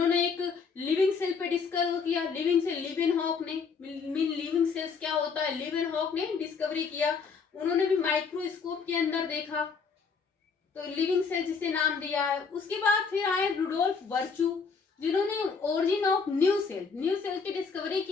एक लिविंग सेल पे डिस्कवर किया, लिविंग सेल, लिवेनहॉक ने, लिविंग सेल्स क्या होता है, लिवेनहॉक ने डिस्कवरी किया, उन्होंने भी माइक्रोस्कोप के अंदर देखा, तो लिविंग सेल जिसे नाम दिया है। उसके बाद फिर आए रुडोल्फ वर्चू, जिन्होंने ओरिजिन ऑफ न्यू सेल की डिस्कवरी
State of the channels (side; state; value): right; quieter; 5.4 dB